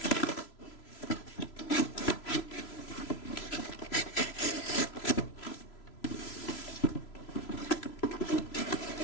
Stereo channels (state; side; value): late; right; 3.0 ms